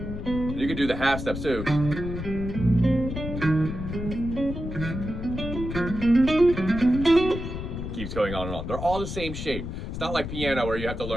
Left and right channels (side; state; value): left; noise; rumble, 6 dB below the sound